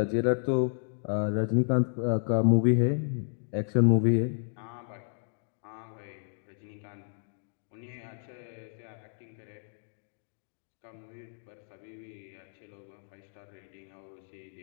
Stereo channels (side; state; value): right; silent; digital silence